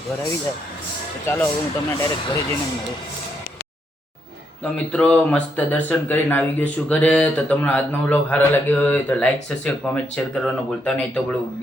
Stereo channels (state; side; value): normal; both; correlation 0.77